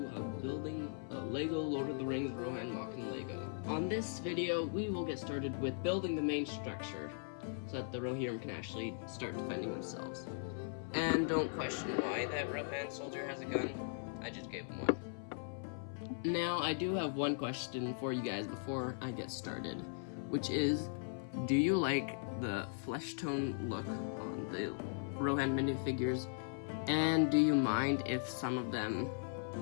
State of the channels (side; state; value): right; silent; 52 dB below the other